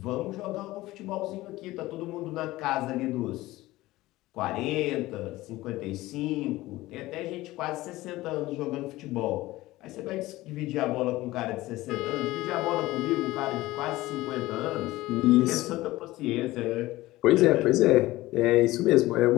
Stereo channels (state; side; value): quieter; right; 17.9 dB